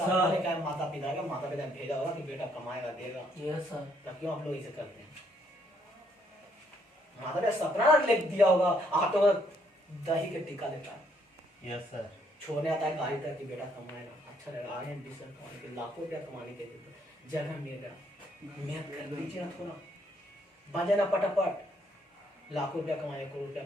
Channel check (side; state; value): both; normal; correlation 0.70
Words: सर, का माता पिता ने भेजा होगा कि बेटा कमाएगा देगा, यस सर, तब क्यों आप लोग इसे करते हैं। माता ने सपना लिख दिया होगा, आप तो दही के टिक्का लेता है, यस सर। छोड़ने आता है गाड़ी तक कि बेटा कमाएगा, अच्छा रहेगा, आगे एम्बिशन कमाने के लाखों रुपया कमाने के लिए जगह मिलेगा, मेहनत कर दीजिए ना थोड़ा, बन ना पटापट, लाखों रुपया कमाइए, करोड़ रुपया